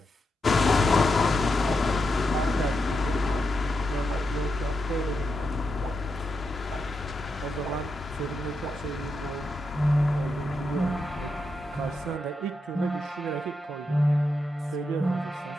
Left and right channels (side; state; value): both; normal; correlation 0.85